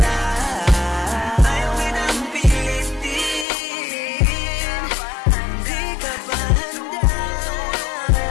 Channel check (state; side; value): drops out; right; at 3.5 s